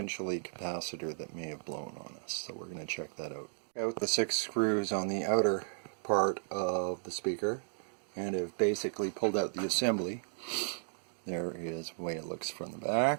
capacitor that may have blown on us. So we're going to check that out. Out the 6 screws on the outer part of the speaker, and have basically pulled out the assembly. There is the way it looks from the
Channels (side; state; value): left; silent; digital silence